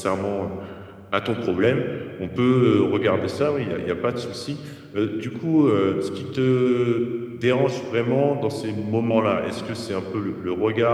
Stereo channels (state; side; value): identical; both; correlation 1.00